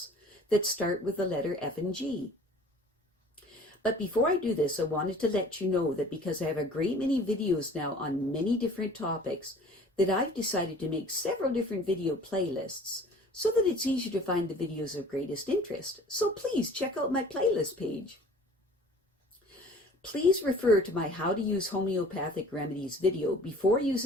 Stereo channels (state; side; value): normal; both; correlation 0.48